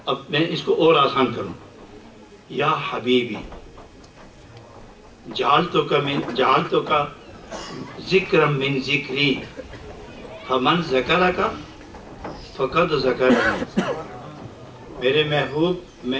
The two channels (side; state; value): both; identical; correlation 1.00